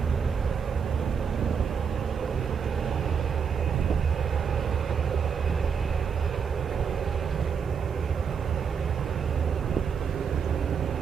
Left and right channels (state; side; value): quieter; left; 6.6 dB